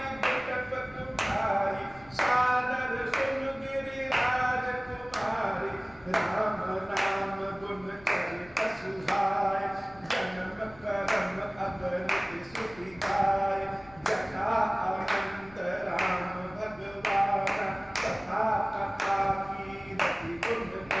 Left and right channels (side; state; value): left; noise; rumble, 23 dB below the sound